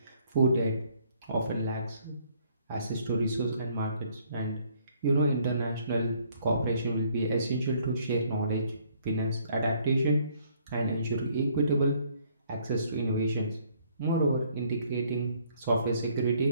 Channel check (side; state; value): both; inverted; correlation -0.64